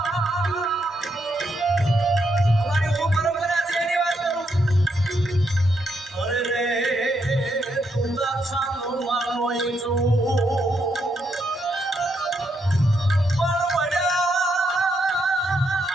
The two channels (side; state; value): both; normal; correlation 0.78